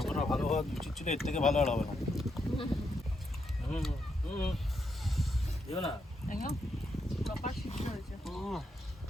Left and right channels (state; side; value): normal; both; correlation 0.80